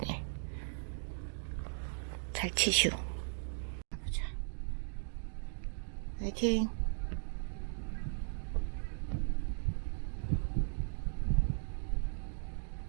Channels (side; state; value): left; silent; digital silence